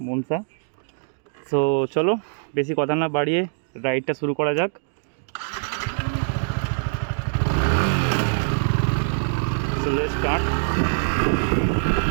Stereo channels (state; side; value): silent; left; digital silence